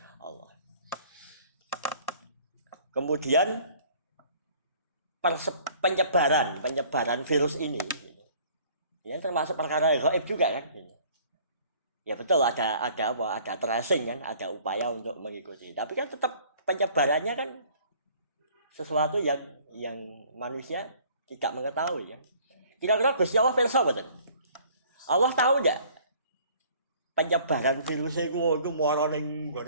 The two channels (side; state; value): both; inverted; correlation -0.54